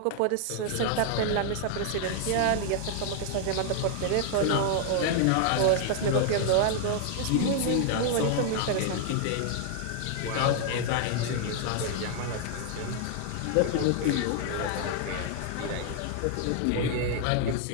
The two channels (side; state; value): both; different; correlation 0.00